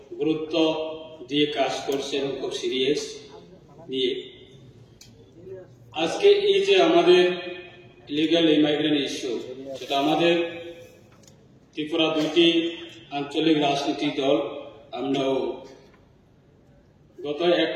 গুরুত্ব দিয়ে কাজ করছে এবং খুব সিরিয়াস নিয়ে। আজকে এই যে আমাদের ইলিগাল ইমাইগ্রেন্ট ইস্যু, সেটা আমাদের ত্রিপুরা দুইটি আঞ্চলিক রাজনৈতিক দল আমরাও গত 1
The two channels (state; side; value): identical; both; correlation 1.00